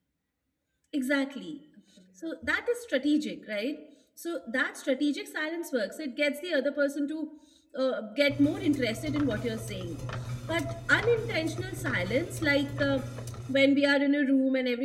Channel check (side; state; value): both; identical; correlation 1.00